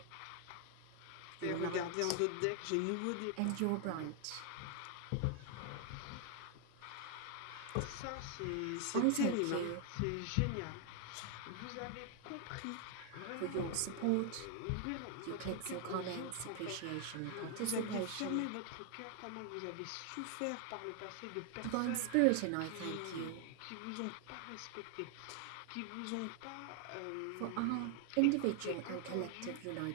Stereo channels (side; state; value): both; different; correlation 0.00